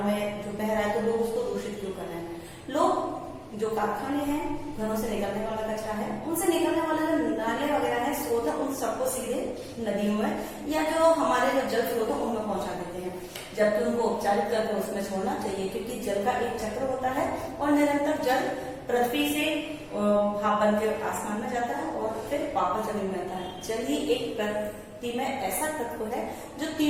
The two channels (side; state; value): both; identical; correlation 1.00